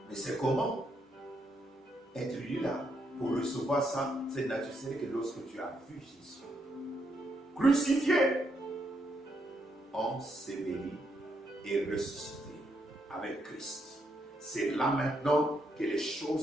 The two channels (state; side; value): normal; both; correlation 0.78